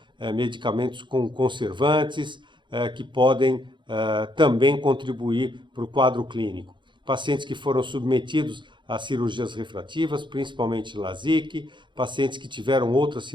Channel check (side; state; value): left; late; 0.23 ms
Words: medicamentos com conservantes, que podem também contribuir para o quadro clínico. Pacientes que foram submetidos a cirurgias refrativas, principalmente LASIK, pacientes que tiveram outras